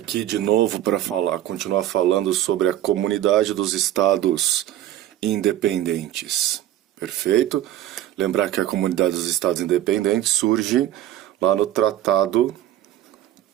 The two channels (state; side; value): quieter; left; 12.8 dB